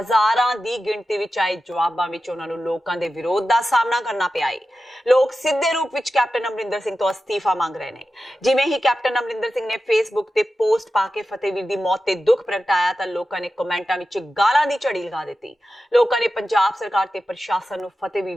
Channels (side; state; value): both; normal; correlation 0.93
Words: ਦੀ ਗਿਣਤੀ ਵਿੱਚ ਆਏ ਜਵਾਬਾਂ ਵਿੱਚ ਉਹਨਾਂ ਨੂੰ ਲੋਕਾਂ ਦੇ ਵਿਰੋਧ ਦਾ ਸਾਹਮਣਾ ਕਰਨਾ ਪਿਆ ਹੈ। ਲੋਕ ਸਿੱਧੇ ਰੂਪ ਵਿੱਚ ਕੈਪਟਨ ਅਮਰਿੰਦਰ ਸਿੰਘ ਤੋਂ ਅਸਤੀਫਾ ਮੰਗ ਰਹੇ ਨੇ। ਜਿਵੇਂ ਹੀ ਕੈਪਟਨ ਅਮਰਿੰਦਰ ਸਿੰਘ ਨੇ ਫੇਸਬੁੱਕ ਤੇ ਪੋਸਟ ਪਾ ਕੇ ਫਤਿਹਵੀਰ ਦੀ ਮੌਤ ਤੇ ਦੁੱਖ ਪ੍ਰਗਟਾਇਆ ਤਾਂ ਲੋਕਾਂ ਨੇ ਕਮੈਂਟਾਂ ਵਿੱਚ ਗਾਲਾਂ ਦੀ ਝੜੀ ਲਗਾ ਦਿੱਤੀ। ਲੋਕਾਂ ਨੇ ਪੰਜਾਬ ਸਰਕਾਰ ਤੇ ਪ੍ਰਸ਼ਾਸਨ ਨੂੰ ਫਤਿਹਵੀਰ